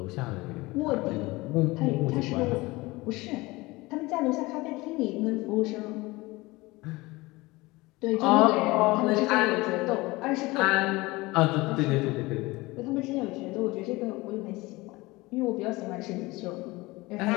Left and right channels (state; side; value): quieter; right; 21.8 dB